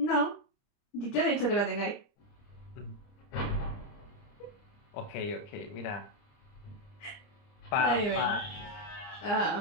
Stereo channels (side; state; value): right; late; 30 ms